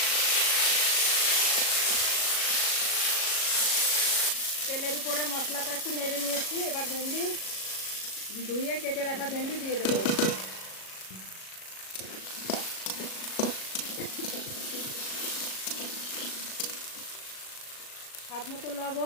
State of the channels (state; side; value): late; right; 37 ms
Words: তেলের উপরে মশলাটা একটু নেড়ে নিয়েছি। এবার ভেন্ডি ধুয়ে কেটে রাখা ভেন্ডি দিয়ে দেবো। স্বাদ মতো